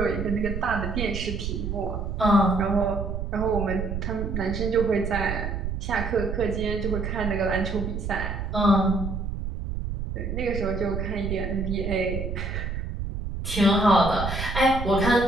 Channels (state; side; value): noise; right; rumble, 4 dB below the sound